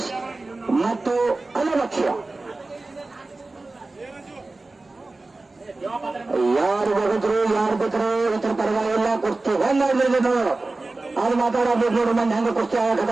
ಮತ್ತು ಅಲ್ಲಭಕ್ಷ್ಯ ಯಾರು ಬಗದ್ರು ಯಾರು ಬಿಟ್ಟರು ಇತರ ಪರವಾಗಿಲ್ಲ. ಕುಸ್ತಿ ಹೆಂಗಾಗ್ಲಿಲ್ಲ ಅದು ಮಾತಾಡಬೇಕು ನೋಡು. ಮಂದಿ ಹೆಂಗ ಕುಸ್ತಿ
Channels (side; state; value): left; quieter; 3.3 dB